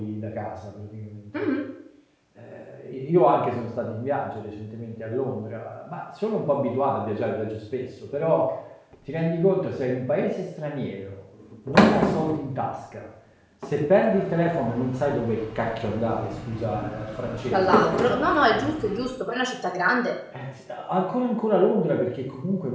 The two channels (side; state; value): both; identical; correlation 1.00